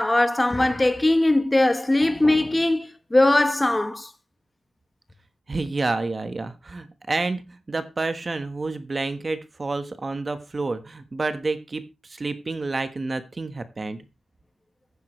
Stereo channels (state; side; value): normal; both; correlation 0.97